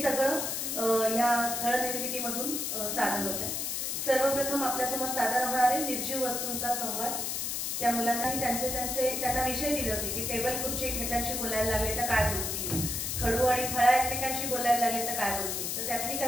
सगळं या स्थळ निर्मितीमधून सादर होत आहे. सर्वप्रथम आपल्यासमोर सादर होणारे निर्जीव वस्तूंचा संवाद. त्या मुलांनाही त्यांना विषय दिले होते की टेबल खुर्ची एकमेकांशी बोलायला लागले तर काय बोलतील, खडू आणि फळा एकमेकांशी बोलायला लागले तर काय बोलतील. तर त्यातली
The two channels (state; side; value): noise; left; hiss, 2 dB below the sound